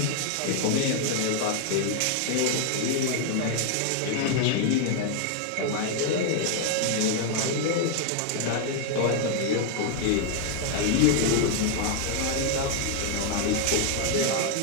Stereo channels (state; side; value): different; both; correlation 0.00